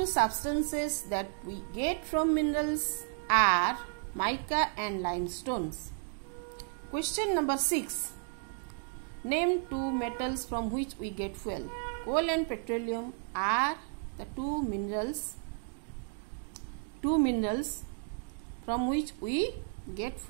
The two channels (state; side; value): silent; left; 56 dB below the other